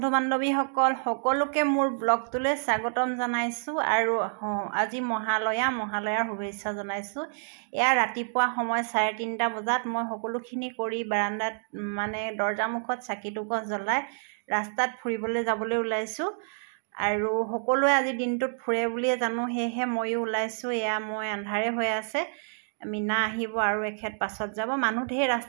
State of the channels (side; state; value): left; silent; digital silence